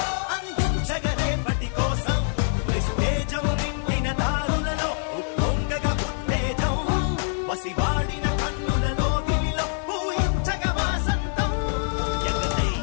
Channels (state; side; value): silent; right; 62 dB below the other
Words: అందించగ రేపటి కోసం నిస్తేజం నిండిన దారులలో ఉప్పొంగగ ఉత్తేజం వసివాడిన కన్నులలో గిలిలో పూయించగ వాసంతం ఎగరై